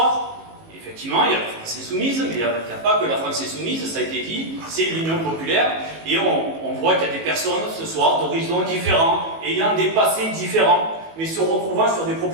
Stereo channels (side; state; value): left; late; 18 ms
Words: effectivement, il y a la France Insoumise, mais il n'y a pas que la France Insoumise, ça a été dit, c'est l'Union populaire, et on voit qu'il y a des personnes ce soir d'horizons différents, ayant des passés différents, mais se retrouvant sur des